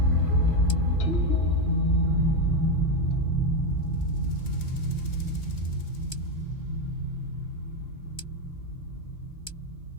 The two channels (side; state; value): right; late; 3.0 ms